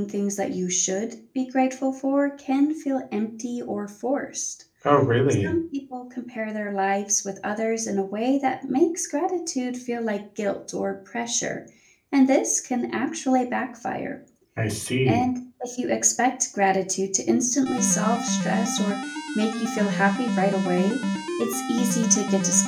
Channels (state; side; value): identical; both; correlation 1.00